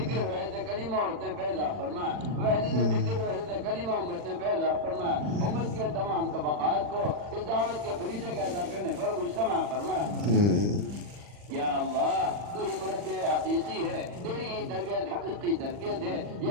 فکر وحدت کلمہ امت نے پیدا فرما، وحدت فکر وحدت کلمہ امت نے پیدا فرما، امت کے تمام طبقات کو اس دعوت کے فریضے کا ادا کرنے پر مجتمع فرما۔ یا اللہ تو ہی مربی حقیقی ہے، تیری ہی تربیت حقیقی تربیت ہے،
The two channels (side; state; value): left; late; 40 ms